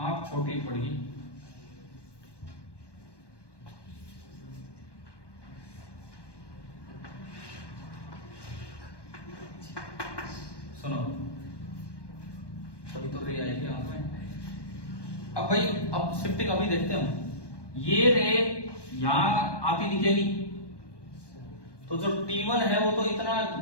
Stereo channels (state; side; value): late; right; 1.2 ms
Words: छोटी पड़ेगी, सुनो तभी तो रे आएगी आंख में। अब भाई अब शिफ्टिंग अभी देखते हैं हम, ये रे यहां आती दिखेगी तो जो T1 है वो तो इतना